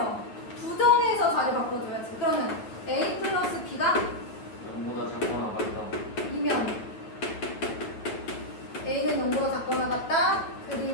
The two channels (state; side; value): late; right; 9.1 ms